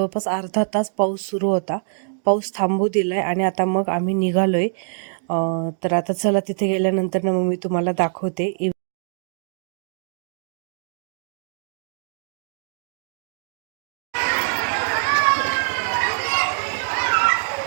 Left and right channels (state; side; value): silent; left; digital silence